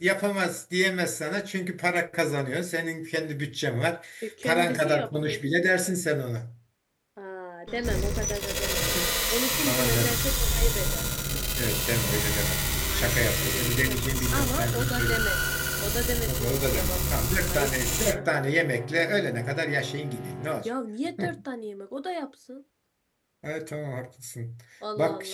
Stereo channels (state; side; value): identical; both; correlation 1.00